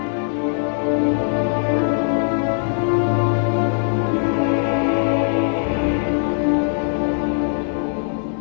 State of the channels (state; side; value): silent; right; digital silence